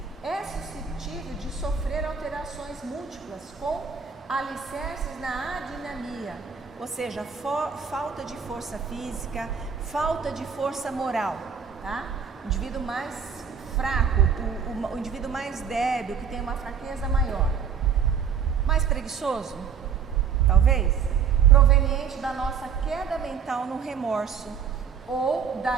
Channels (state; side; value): quieter; left; 7.0 dB